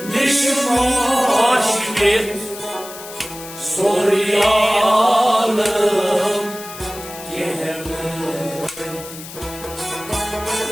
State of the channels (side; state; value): left; noise; hiss, 14 dB below the sound